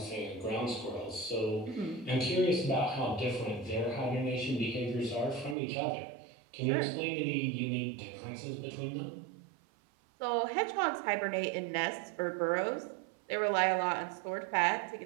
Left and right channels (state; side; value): drops out; left; at 5.6 s